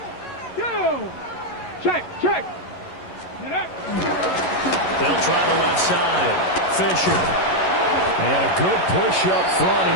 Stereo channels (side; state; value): right; late; 11 ms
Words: Check. They'll try the left side. Fisher. And a good push up front, and